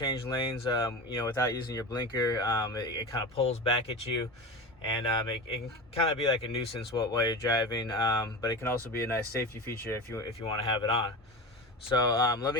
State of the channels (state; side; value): normal; both; correlation 0.28